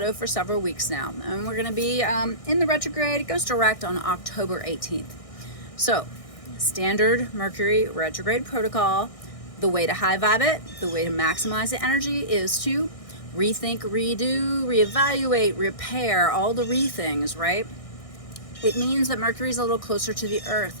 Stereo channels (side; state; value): right; late; 1.6 ms